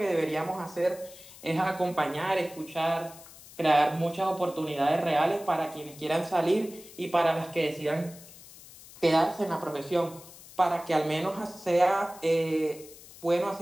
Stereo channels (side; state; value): left; noise; hiss, 19 dB below the sound